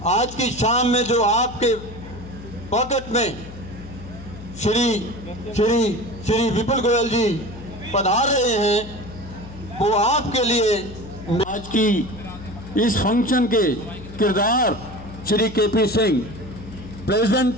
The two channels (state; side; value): noise; left; hum, 15 dB below the sound